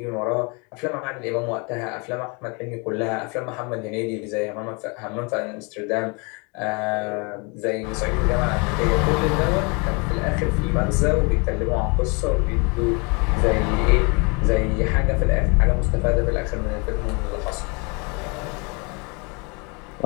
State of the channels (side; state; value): right; quieter; 31.4 dB